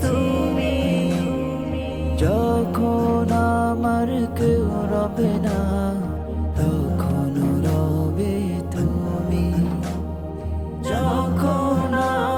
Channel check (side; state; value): both; identical; correlation 1.00